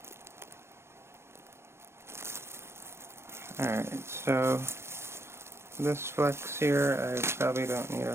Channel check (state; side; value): late; left; 0.12 ms